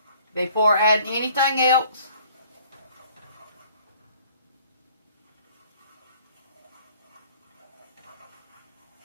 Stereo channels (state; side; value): inverted; both; correlation -0.55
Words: before adding anything else.